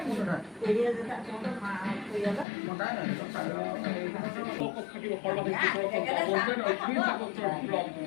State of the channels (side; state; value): right; drops out; at 2.5 s